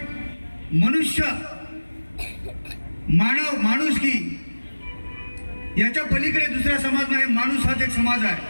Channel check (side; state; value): both; inverted; correlation -1.00